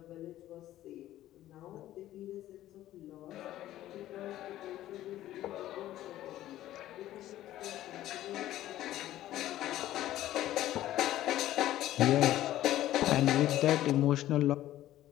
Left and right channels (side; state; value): right; quieter; 13.9 dB